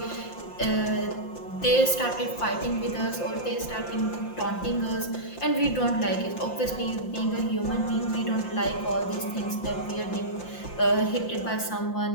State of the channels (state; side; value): late; right; 5.7 ms